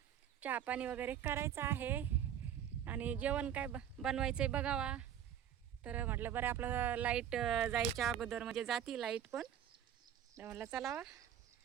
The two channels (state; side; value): quieter; left; 9.8 dB